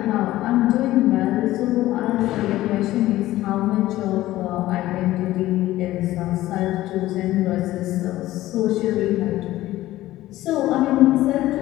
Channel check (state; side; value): quieter; right; 15.7 dB